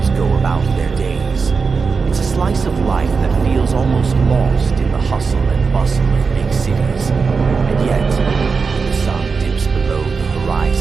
go about their days. It's a slice of life that feels almost lost in the hustle and bustle of big cities. And yet, when the sun dips below the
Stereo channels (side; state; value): left; quieter; 5.0 dB